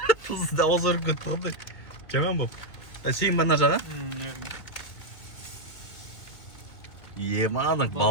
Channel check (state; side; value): late; right; 2.2 ms